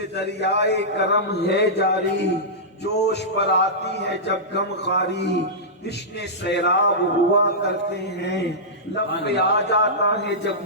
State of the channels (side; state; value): both; normal; correlation -0.14